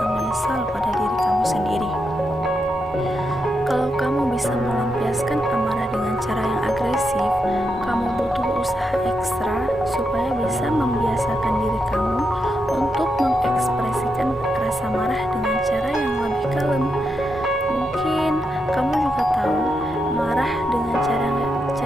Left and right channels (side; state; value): both; normal; correlation 0.84